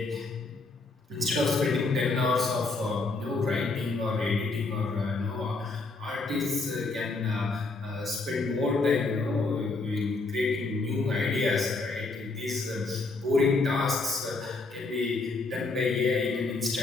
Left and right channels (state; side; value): quieter; right; 3.6 dB